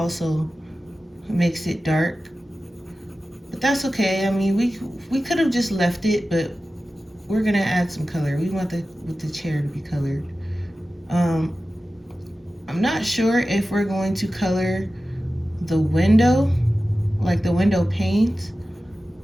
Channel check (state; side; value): normal; both; correlation 0.95